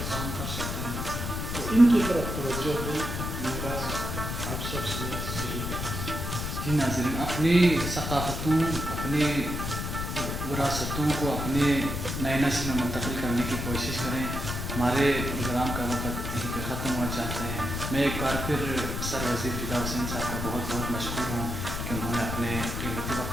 کام کر سکتے ہیں. تو ان کی طرف توجہ دیں، میرا آپ سب سے یہی پیغام ہے. جی ناظرین، اپنی ثقافتوں، اپنی وراثتوں کو اپنے نئے نسل میں منتقل کرنے کی کوشش کریں. ہمارے پروگرام کا وقت یہیں پہ ختم ہوا چاہتے ہیں. میں ایک بار پھر سر وزیر فدا حسین صاحب کا بہت بہت مشکور ہوں کہ انہوں نے اپنے قیمتی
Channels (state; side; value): noise; left; rumble, 4 dB below the sound